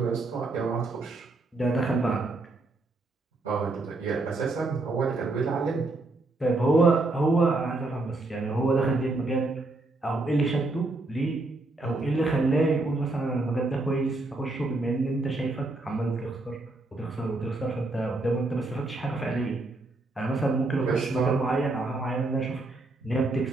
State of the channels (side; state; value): left; quieter; 3.1 dB